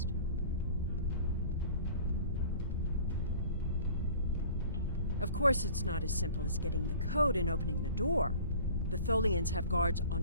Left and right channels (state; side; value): inverted; both; correlation -0.46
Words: Of course, it's not as simple as getting the code and opening the door. The Tholians have guards